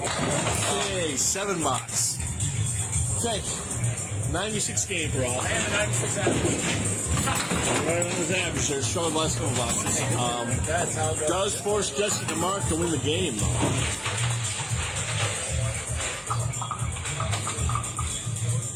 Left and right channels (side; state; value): both; identical; correlation 1.00